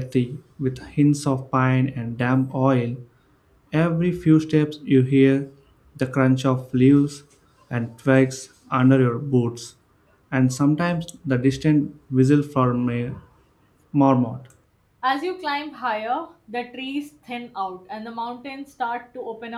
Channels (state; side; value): identical; both; correlation 1.00